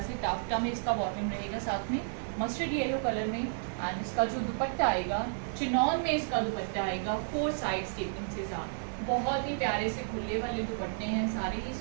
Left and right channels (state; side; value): silent; left; 56 dB below the other